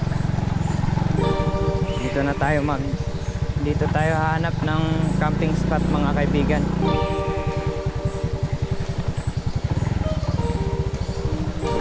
Dito tayo hahanap ng camping spot mga kaibigan.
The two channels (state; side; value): identical; both; correlation 1.00